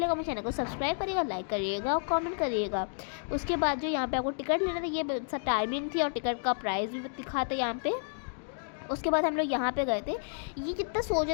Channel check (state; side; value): silent; right; digital silence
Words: मेरे चैनल को सब्सक्राइब करिएगा, लाइक करिएगा और कमेंट करिएगा। उसके बाद जो यहाँ पे आपको टिकट लेना था, ये टाइमिंग थी और टिकट का प्राइस भी दिखाता यहाँ पे। उसके बाद हम लोग यहाँ पे गए थे, ये कितना